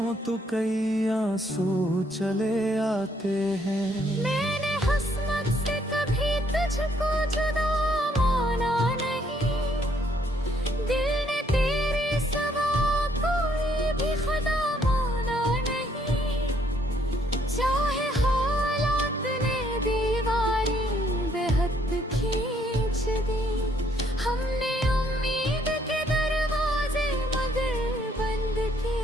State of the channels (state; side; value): normal; both; correlation 0.68